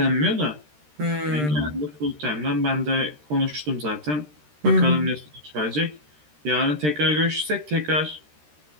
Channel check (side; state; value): left; late; 13 ms